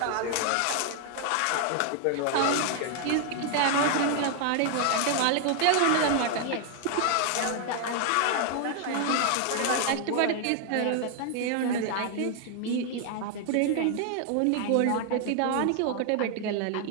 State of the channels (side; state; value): both; different; correlation 0.00